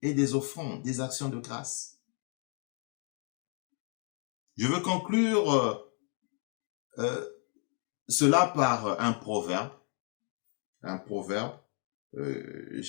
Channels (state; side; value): quieter; right; 37.9 dB